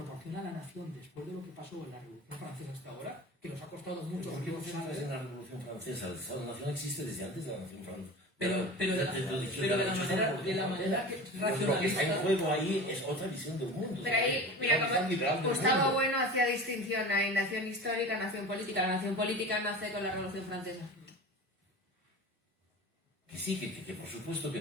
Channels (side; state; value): both; normal; correlation 0.33